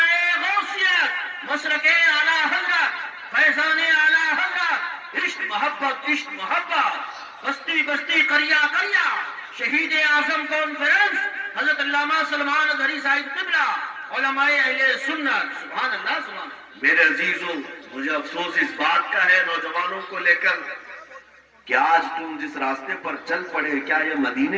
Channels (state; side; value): identical; both; correlation 1.00